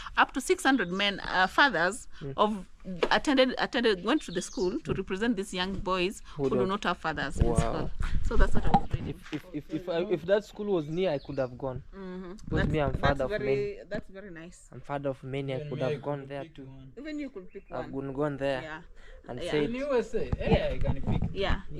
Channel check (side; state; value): both; identical; correlation 1.00